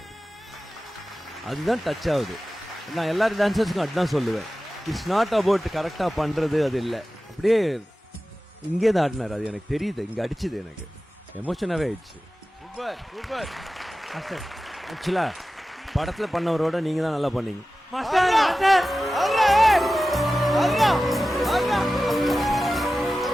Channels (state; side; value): normal; both; correlation 0.95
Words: அதுதான் டச் ஆகுது. நான் எல்லாரும் டான்சர்ஸுக்கும் அதுதான் சொல்லுவேன், இட்ஸ் நாட் அபவுட் கரெக்டாக பண்ணுறது, அது இல்லை, அப்படியே இங்கேருந்து ஆடினார். அது எனக்கு தெரியுது, இங்கே அடிச்சுது, எனக்கு எமோஷனாகவே ஆயிடுச்சு. Super super master. ஆக்சுவலா படத்தில் பண்ணவரோட நீங்கள் தான் நல்லா பண்ணீங்க மாஸ்டர்.